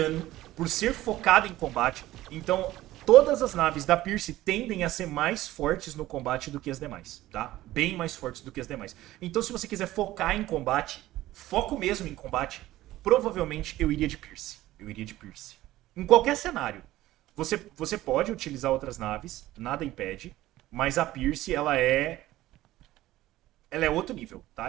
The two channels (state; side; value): quieter; left; 15.8 dB